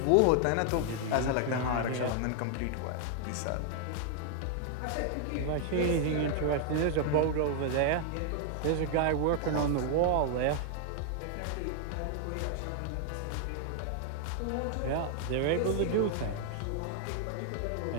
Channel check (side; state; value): both; different; correlation 0.00